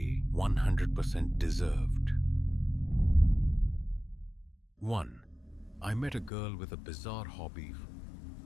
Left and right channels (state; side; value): drops out; right; at 6.3 s